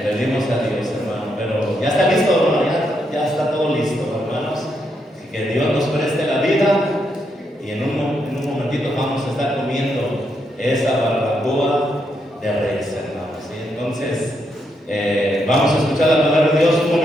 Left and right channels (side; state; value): both; normal; correlation 0.80